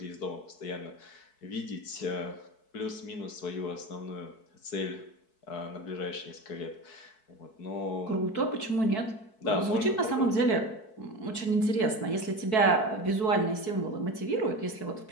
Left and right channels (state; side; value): late; right; 4.6 ms